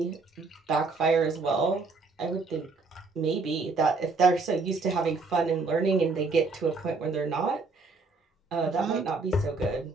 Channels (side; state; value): left; quieter; 4.0 dB